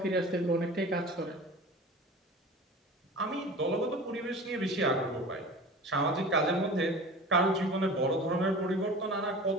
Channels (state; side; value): normal; both; correlation 0.37